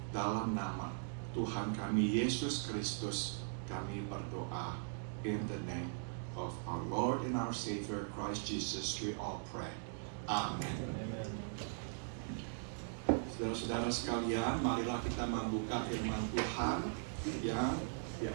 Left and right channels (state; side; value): silent; left; digital silence